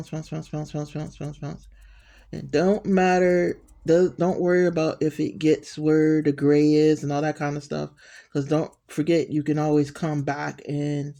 pounce, pounce, pounce, pounce, pounce, pounce, pounce. And don't matter, don't worry about if it gets where the gray is and all that kind of stuff. Because don't forget, you can always come back and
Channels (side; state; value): both; identical; correlation 1.00